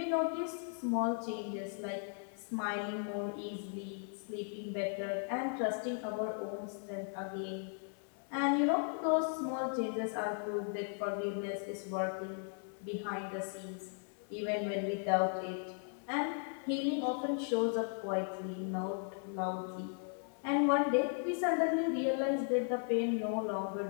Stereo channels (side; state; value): right; silent; 53 dB below the other